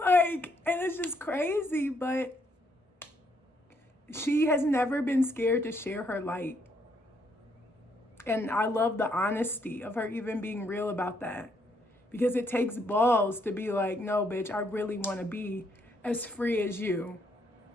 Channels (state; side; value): normal; both; correlation 0.72